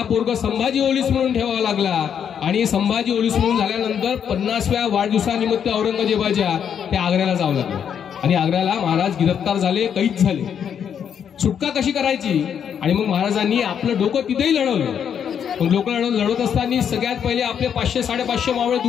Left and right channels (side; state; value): right; quieter; 8.2 dB